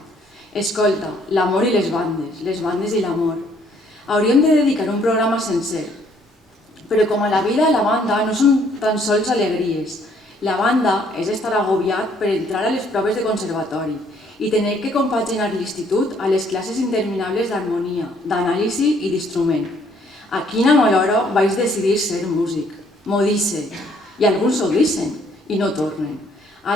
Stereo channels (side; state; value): both; normal; correlation 0.65